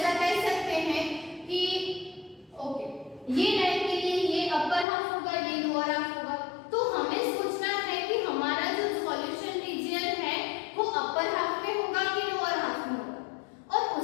कह सकते हैं कि ओके, ये लाइन के लिए ये अपर हाफ होगा, ये लोअर हाफ होगा। तो हमें सोचना है कि हमारा जो सॉल्यूशन रीजन है वो अपर हाफ में होगा कि लोअर हाफ में होगा, और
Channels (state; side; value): drops out; right; at 4.9 s